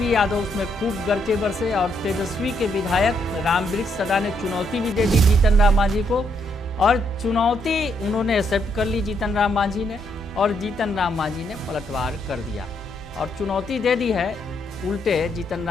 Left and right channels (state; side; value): normal; both; correlation 0.75